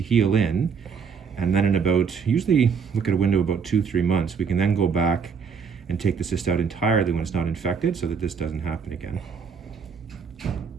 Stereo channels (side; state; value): left; quieter; 6.2 dB